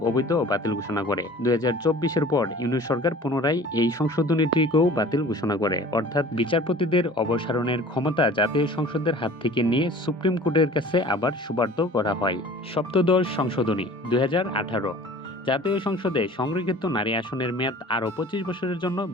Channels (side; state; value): both; normal; correlation 0.45